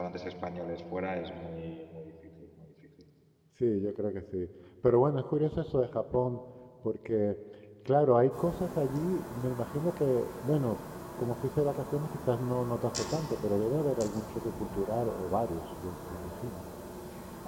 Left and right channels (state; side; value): identical; both; correlation 1.00